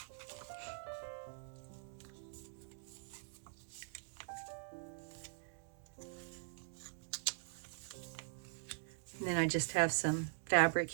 And then I just have some fabric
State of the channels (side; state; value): left; silent; digital silence